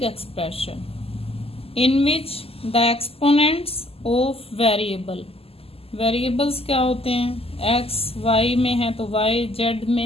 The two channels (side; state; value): right; late; 0.28 ms